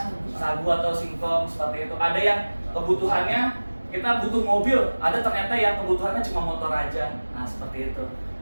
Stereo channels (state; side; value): inverted; both; correlation -1.00